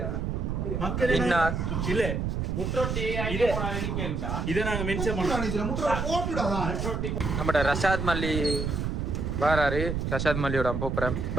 மக்கள் மின்னாஸ் இல்ல இதை நாங்க மென்ஷன் பண்ணோம். நம்ம ரஷாத் மல்லி வராரு. ரஷாத் மல்லியோட போப்புறேன்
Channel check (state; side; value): noise; right; rumble, 1 dB below the sound